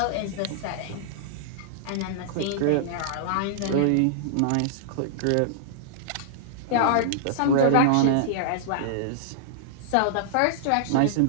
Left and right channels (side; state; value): both; different; correlation -0.02